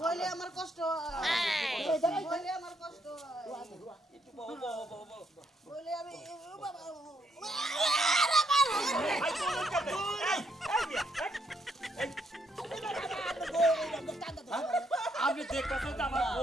বলে আমার কষ্ট বলে আমার কষ্ট একটু বহ বলে আমি বাবা আপনি দেখতেছেন যে আমার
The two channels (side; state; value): both; normal; correlation 0.74